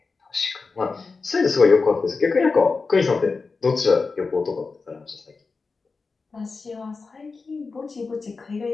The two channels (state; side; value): quieter; right; 4.3 dB